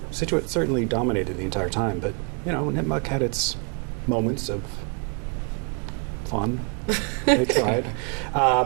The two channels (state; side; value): quieter; left; 36.9 dB